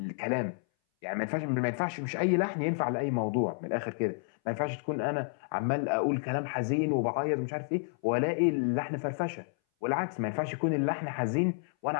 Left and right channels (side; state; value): right; silent; 57 dB below the other